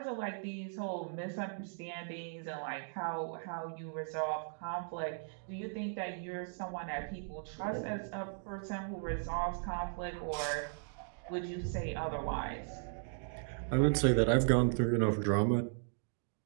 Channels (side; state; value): left; silent; digital silence